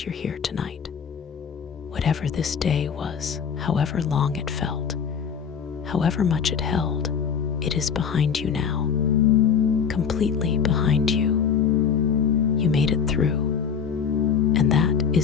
you're here tonight. Whatever this day was, however long it felt, however much it held, it is behind you now. Completely behind you. You made it through. And that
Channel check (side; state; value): right; quieter; 6.9 dB